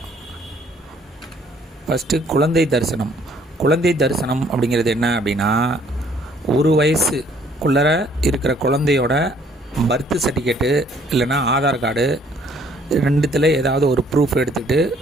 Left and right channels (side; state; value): both; normal; correlation 0.62